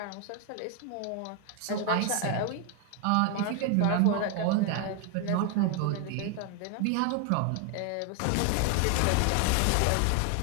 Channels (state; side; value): different; both; correlation 0.00